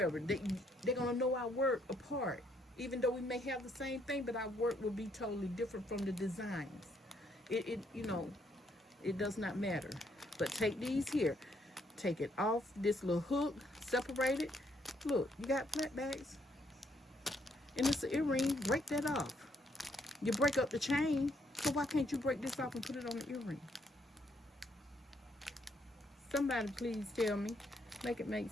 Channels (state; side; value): normal; both; correlation 0.72